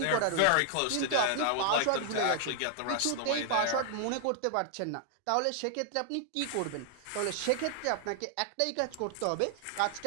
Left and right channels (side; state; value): both; different; correlation 0.00